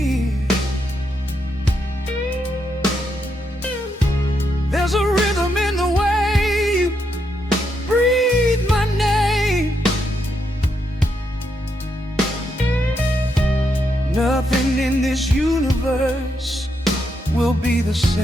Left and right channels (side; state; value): both; normal; correlation 0.80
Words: There's a rhythm in the way you breathe my name. Nothing in this universe will be the